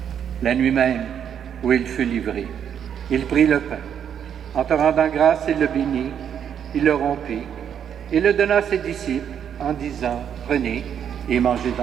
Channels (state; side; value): quieter; left; 8.6 dB